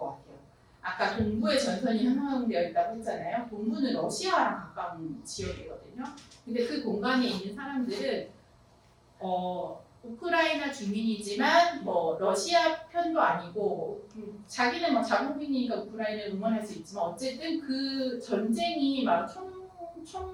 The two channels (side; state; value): both; identical; correlation 1.00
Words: 같아요. 아까 동부의 전선이 형성되어 있다고 했잖아요. 동부는 러시아랑 가까운 지역이거든요. 근데 그 공간에 있는 사람들은 우크라이나 주민이지만 러시아 편도 아니고 자기는 자국민이니까 우크라이나를 응원할 수 있지만 어쨌든 그 전쟁이 막